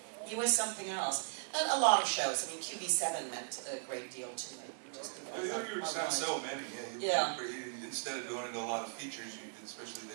he was something else. And a lot of shows. I mean, QB7 meant a great deal to me. Just you were on so many. Yeah. Instead of going into a lot of features, especially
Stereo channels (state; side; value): silent; left; digital silence